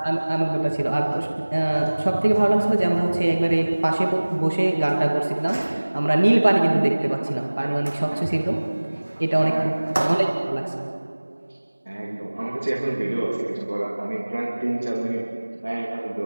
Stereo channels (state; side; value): inverted; both; correlation -1.00